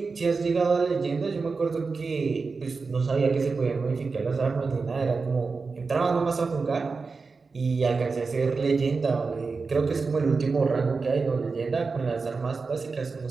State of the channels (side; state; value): left; quieter; 4.4 dB